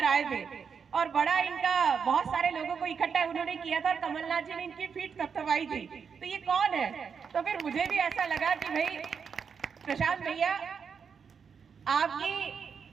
आए थे और बड़ा इनका बहुत सारे लोगों को इकट्ठा उन्होंने किया था और कमलनाथ जी ने इनकी पीठ थपथपाई थी। तो ये कौन है? तो फिर मुझे भी ऐसा लगा कि भाई प्रशांत भैया आपकी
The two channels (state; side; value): quieter; left; 6.3 dB